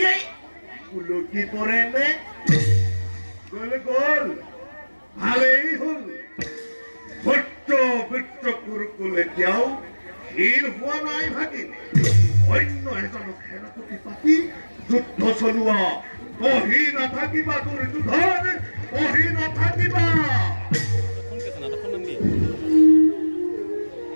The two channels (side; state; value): both; inverted; correlation -1.00